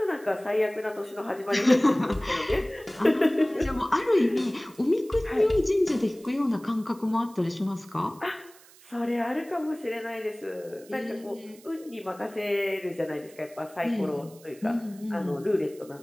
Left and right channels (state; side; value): noise; right; hiss, 24 dB below the sound